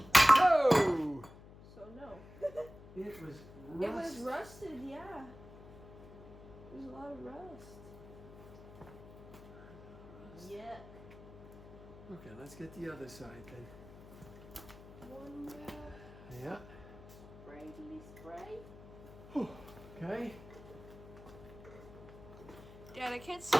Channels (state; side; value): noise; left; hum, 17 dB below the sound